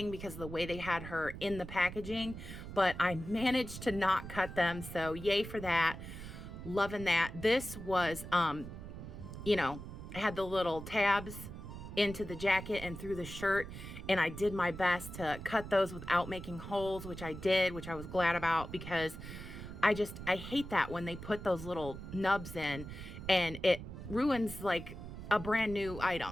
because of the way they had her in the packaging, but I managed to not cut them, so yay for that. Loving that. This was, you know, had the little tabs into the jacket and through the shirt, and I did my best to cut those without making holes, which I did, which I was glad about, because I hate that when they put those little nubs in and it ruins like a brand new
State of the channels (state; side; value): noise; right; rumble, 10 dB below the sound